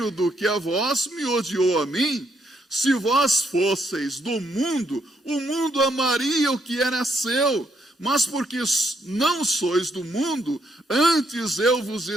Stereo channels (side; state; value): both; normal; correlation 0.75